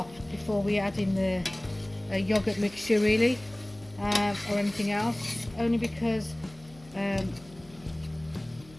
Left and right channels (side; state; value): left; noise; hum, 23 dB below the sound